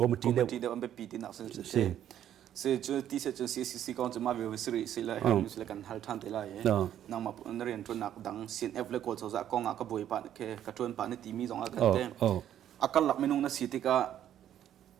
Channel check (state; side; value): quieter; left; 10.8 dB